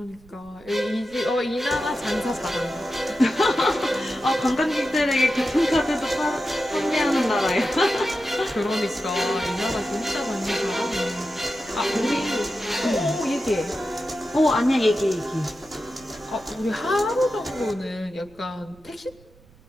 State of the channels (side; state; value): right; noise; rumble, 26 dB below the sound